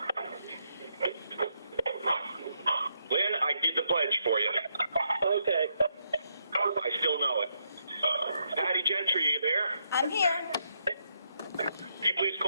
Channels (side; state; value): both; inverted; correlation -0.78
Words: Lynn, I did the pledge for you. Okay. I still know it. Patty Gentry, are you there? I'm here. Can you please